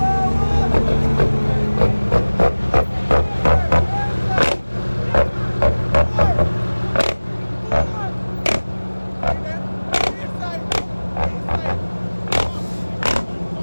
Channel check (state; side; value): inverted; both; correlation -1.00